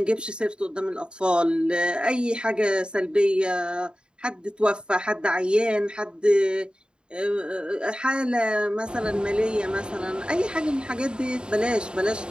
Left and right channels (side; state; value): left; late; 0.051 ms